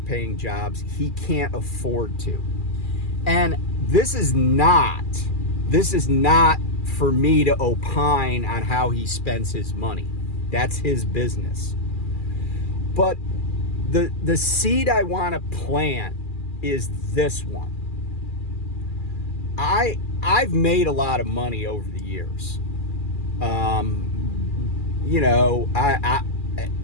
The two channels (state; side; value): late; right; 2.4 ms